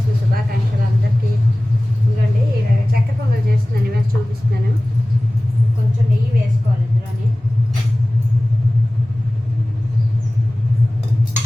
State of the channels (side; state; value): both; normal; correlation 0.98